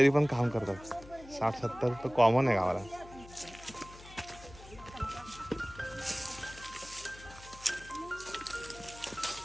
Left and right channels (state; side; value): noise; left; hum, 18 dB below the sound